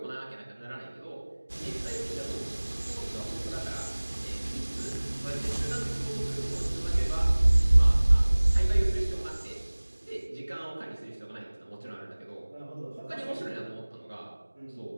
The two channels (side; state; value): both; inverted; correlation -1.00